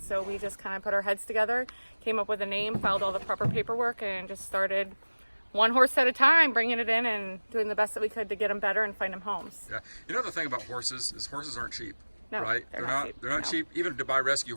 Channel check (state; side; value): inverted; both; correlation -1.00